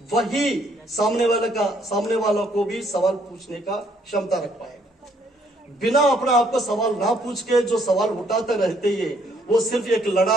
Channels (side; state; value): both; normal; correlation 0.67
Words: वही सामने वाला को भी सवाल पूछने का क्षमता रख पाएगा। बिना अपना आपको सवाल ना पूछ के जो सवाल उठाते रहते हैं वो सिर्फ एक